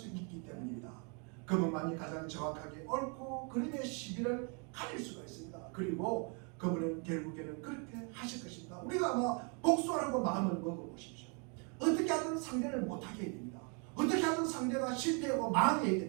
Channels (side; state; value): left; quieter; 36.3 dB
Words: 있기 때문입니다. 그분만이 가장 정확하게 옳고 그름의 시비를 가릴 수가 있습니다. 그리고 그분은 결국에는 그렇게 하실 것입니다. 우리가 아마 복수하라고 마음을 먹어보십시오. 어떻게 하든 상대를 못하게 해야 됩니다. 어떻게 하든 상대가 실패하고 망해야